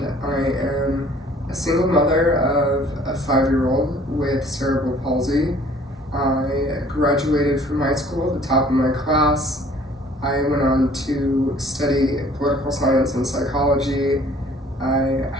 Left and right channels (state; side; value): normal; both; correlation 0.55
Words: I am a single mother of a 5-year-old with cerebral palsy. I graduated from high school at the top of my class. I went on to study political science and psychology. I